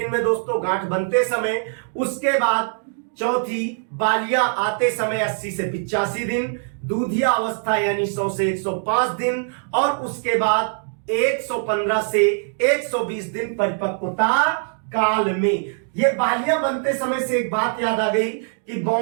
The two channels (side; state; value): left; silent; 63 dB below the other